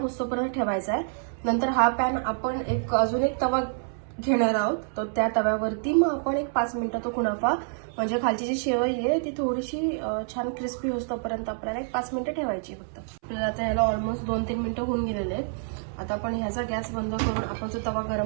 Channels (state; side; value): silent; left; 60 dB below the other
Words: होतोपर्यंत ठेवायचा आहे. नंतर हा पॅन आपण अजून एक तवा घेणार आहोत. तर त्या तव्यावरती मग आपण एक 5 मिनिटं तो कुनाफा म्हणजे खालची जी शेवई आहे ती थोडीशी छान क्रिस्पी होतोपर्यंत आपल्याला एक 5 मिनिटं ठेवायची फक्त. आपल्याला आता याला ऑलमोस्ट 2-3 मिनिटं होऊन गेलेले आहेत. आता आपण ह्याचा गॅस बंद करून आपण जो तवा